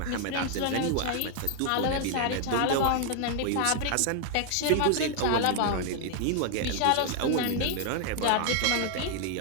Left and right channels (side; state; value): both; different; correlation 0.00